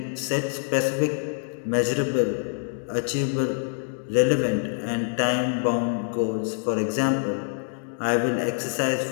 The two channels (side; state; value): right; silent; 61 dB below the other